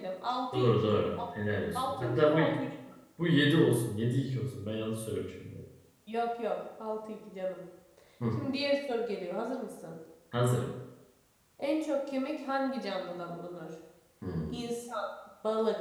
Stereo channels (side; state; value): both; identical; correlation 1.00